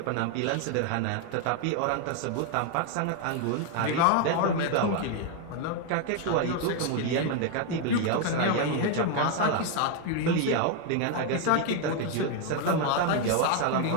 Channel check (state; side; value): different; both; correlation 0.01